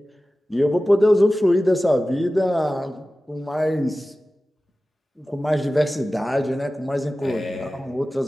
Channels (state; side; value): normal; both; correlation 0.96